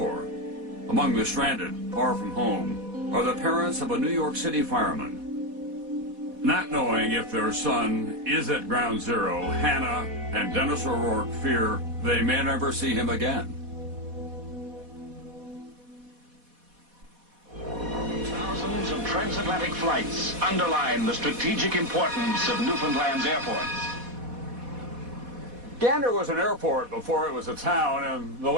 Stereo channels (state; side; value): late; left; 4.1 ms